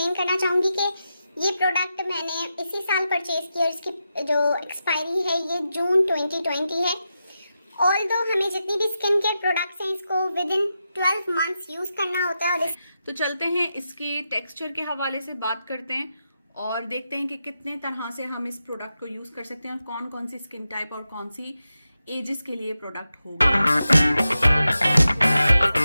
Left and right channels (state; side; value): inverted; both; correlation -0.89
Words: करना चाहूँगी कि ये प्रोडक्ट मैंने इसी साल परचेज किया और इसकी जो एक्सपायरी है ये जून 2020 है। ऑल्दो हमें जितनी भी स्किन केयर प्रोडक्ट्स हैं इसको विद इन 12 मंथ्स यूज़ करना होता है। और तो चलते हैं इसके टेक्सचर के हवाले से बात करते हैं और देखते हैं कि कितने तरह से हम इस प्रोडक्ट को यूज़ कर सकते हैं और कौन कौन सी स्किन टाइप और कौन सी एजेस के लिए प्रोडक्ट होगा।